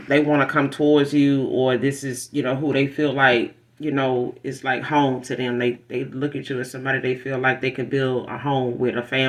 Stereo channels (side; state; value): both; identical; correlation 1.00